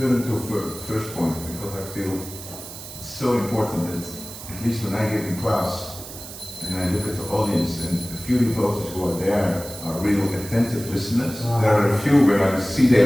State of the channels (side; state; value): right; noise; hiss, 13 dB below the sound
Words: to first point, because I feel it's so important that at least when I give in class and I look at the audience and a few devotees who are there are real attentive listeners. There are a few when I see